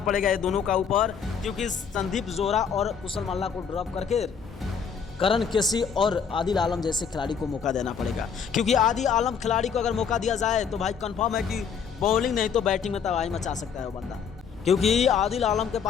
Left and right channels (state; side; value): quieter; right; 6.8 dB